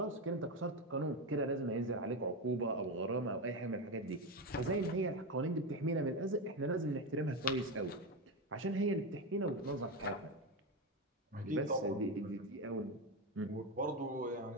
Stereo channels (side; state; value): both; normal; correlation 0.14